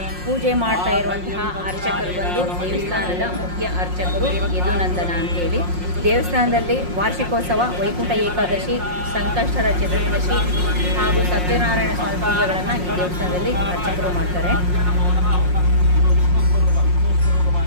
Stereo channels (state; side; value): late; left; 5.6 ms